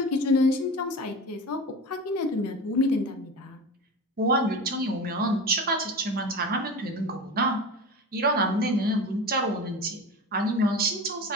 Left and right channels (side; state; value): both; normal; correlation 0.29